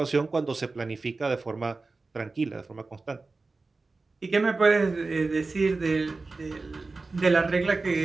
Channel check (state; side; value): quieter; left; 3.7 dB